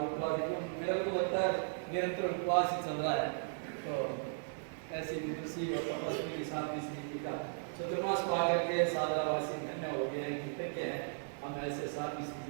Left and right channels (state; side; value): silent; left; 53 dB below the other